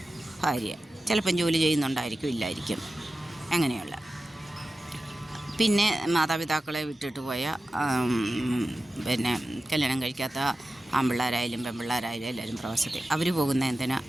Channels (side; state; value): both; normal; correlation 0.94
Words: ഭാര്യ. ചിലപ്പം ജോലി ചെയ്യുന്നുണ്ടായിരിക്കും, ഇല്ലായിരിക്കും, അങ്ങനെയുള്ള. പിന്നെ മാതാപിതാക്കളെ വിട്ടിട്ട് പോയ പിന്നെ കല്യാണം കഴിക്കാത്ത ആൺപിള്ളേരായാലും പെൺപിള്ളേരായാലും എല്ലാവരും പ്രവാസത്തിൽ അവരും പോകുന്ന